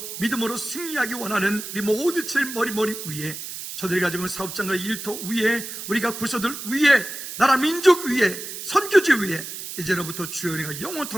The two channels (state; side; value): noise; right; hiss, 9 dB below the sound